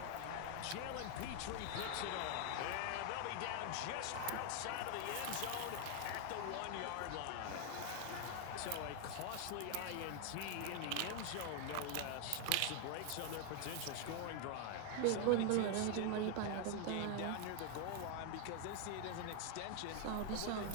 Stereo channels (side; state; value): both; different; correlation 0.00